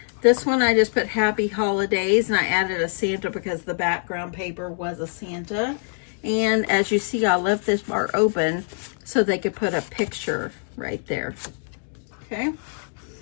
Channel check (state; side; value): silent; right; 63 dB below the other